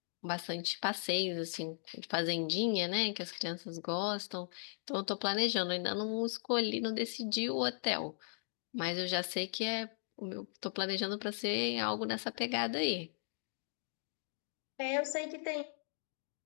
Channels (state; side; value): silent; right; digital silence